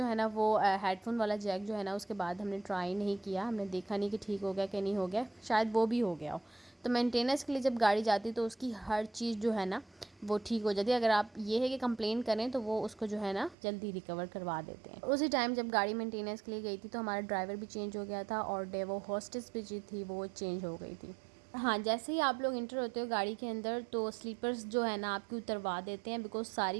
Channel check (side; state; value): left; drops out; at 13.6 s